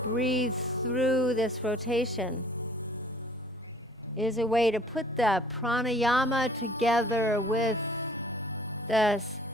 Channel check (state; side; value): normal; both; correlation 0.54